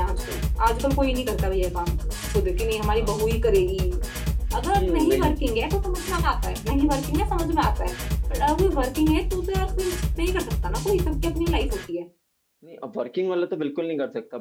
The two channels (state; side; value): identical; both; correlation 1.00